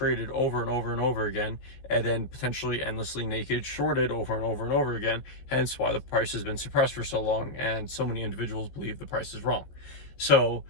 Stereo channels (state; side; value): late; right; 15 ms